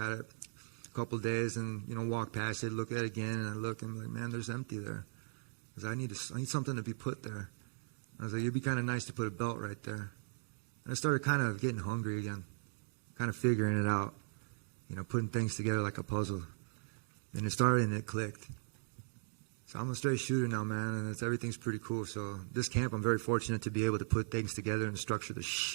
it a couple of days and, walked past it, look at it again, and I look and I'm like, man, there's empty there. Because I need something to be put there. I was like, it'd be kind of nice to put a belt right there. And I started kind of getting hungry again, kind of figuring it out, putting things together like a puzzle. And it started and it clicked. So I'm a straight shooter now, man, and everything's pretty cool. So this camp, I'm very fortunate to be able to put things together and structure the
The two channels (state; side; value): silent; left; digital silence